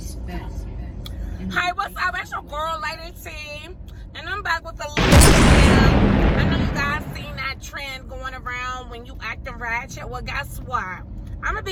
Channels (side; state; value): both; identical; correlation 1.00